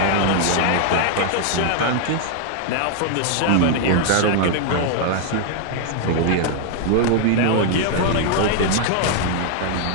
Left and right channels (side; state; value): both; different; correlation 0.00